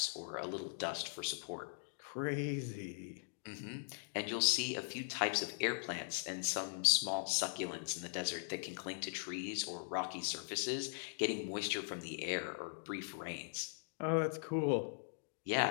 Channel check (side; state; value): right; silent; digital silence